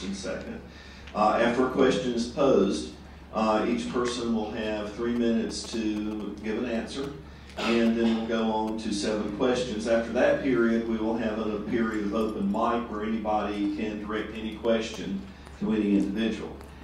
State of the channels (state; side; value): identical; both; correlation 1.00